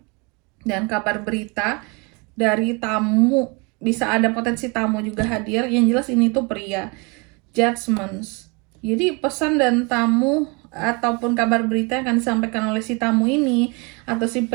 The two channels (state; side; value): quieter; left; 30.0 dB